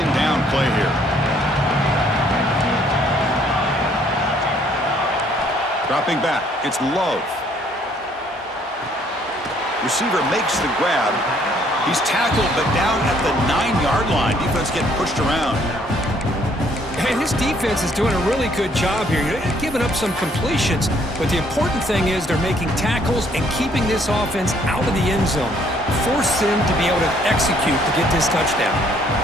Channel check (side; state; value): both; normal; correlation 0.64